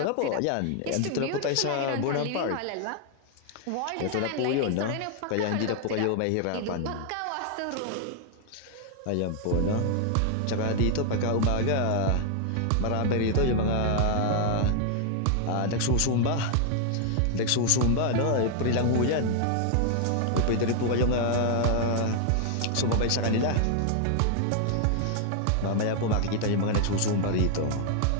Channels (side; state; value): both; different; correlation 0.00